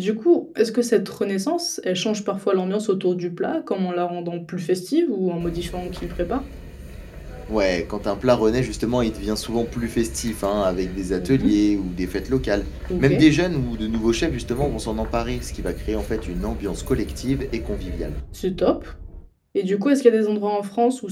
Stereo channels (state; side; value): identical; both; correlation 1.00